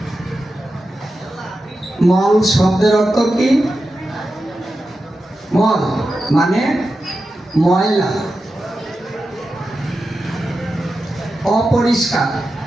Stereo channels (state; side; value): normal; both; correlation 0.91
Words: মল শব্দের অর্থ কি? মল মানে ময়লা, অপরিষ্কার,